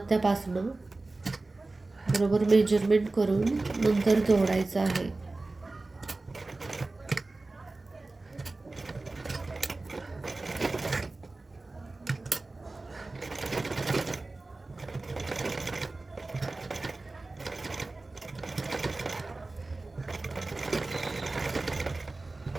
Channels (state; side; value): quieter; left; 3.2 dB